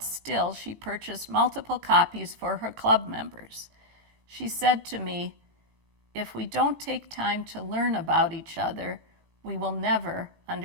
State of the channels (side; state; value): left; late; 18 ms